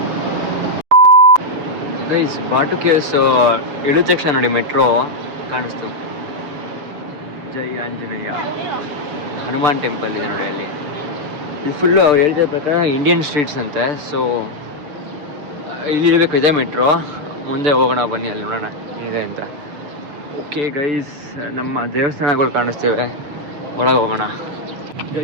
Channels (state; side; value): late; left; 6.8 ms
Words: ಗೈಸ್ ಬಾಟು ಕೇವ್ಸ್ ಇಳಿದ ತಕ್ಷಣ ನೋಡಿ ಮೆಟ್ರೋ ಕಾಣಿಸ್ತು. ಜೈ ಆಂಜನೇಯ ಹನುಮಾನ್ ಟೆಂಪಲ್ ಇದೆ ನೋಡಿ ಅಲ್ಲಿ. ಇದು ಫುಲ್ಲು ಅವ್ರು ಹೇಳ್ತಿದ್ದ ಪ್ರಕಾರ ಇಂಡಿಯನ್ ಸ್ಟ್ರೀಟ್ಸ್ ಅಂತೆ. ಸೊ ಇಲ್ಲಿ ಇರಬೇಕು, ಇದೆ ಮೆಟ್ರೋ. ಮುಂದೆ ಹೋಗೋಣ ಬನ್ನಿ, ಅಲ್ಲಿ ನೋಡೋಣ ಇದೆ ಅಂತ. ಓಕೆ ಗೈಸ್, ನಮ್ಮ ದೇವಸ್ಥಾನಗಳು ಕಾಣಿಸ್ತೇವೆ, ಒಳಗೆ ಹೋಗೋಣ.